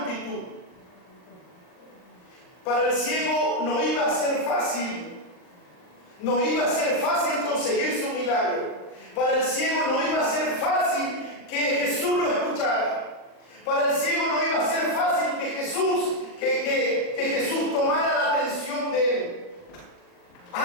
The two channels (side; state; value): right; late; 39 ms